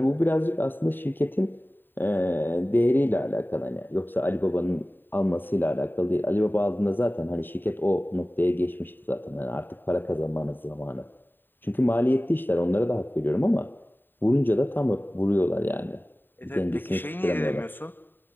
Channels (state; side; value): late; right; 0.093 ms